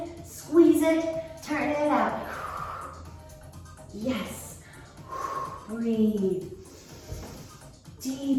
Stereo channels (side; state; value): both; identical; correlation 1.00